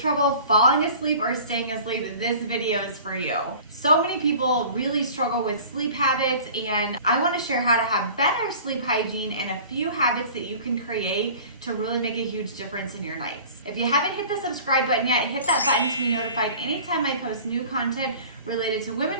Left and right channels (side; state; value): both; inverted; correlation -0.44